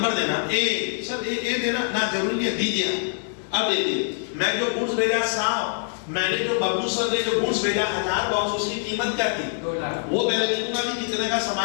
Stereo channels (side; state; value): right; silent; digital silence